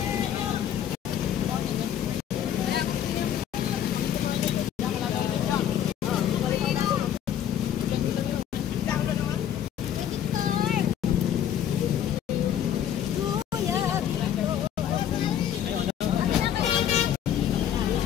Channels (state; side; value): quieter; right; 10.0 dB